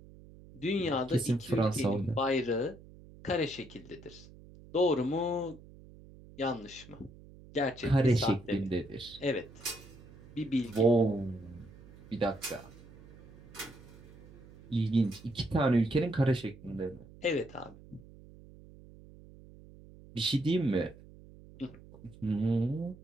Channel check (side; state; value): right; noise; hum, 20 dB below the sound